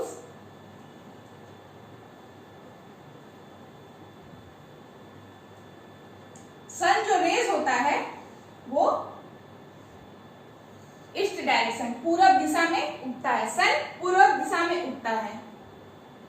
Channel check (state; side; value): identical; both; correlation 1.00